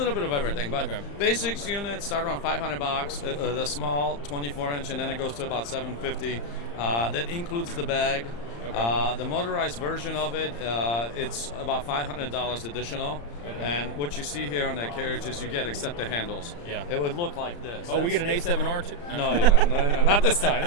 bit of everything, but basics units start around $500. The small 24-inch, and then it goes to about $750. That includes the bag. The motorized version of it, it's about $500 additional. And what you see here on that carriage is you get except the handles. Yeah. It would look like this. Oh, we get an A7R too? No, you don't. No, not this time.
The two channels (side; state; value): right; late; 35 ms